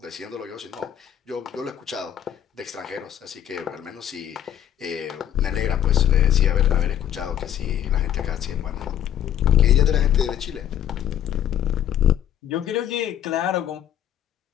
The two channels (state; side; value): quieter; right; 10.5 dB